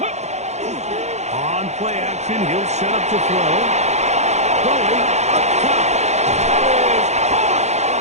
On play action, he'll set up to throw. Throwing up top. That is caught.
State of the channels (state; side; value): late; left; 0.33 ms